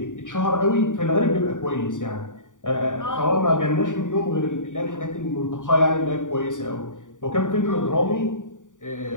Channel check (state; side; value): late; right; 0.87 ms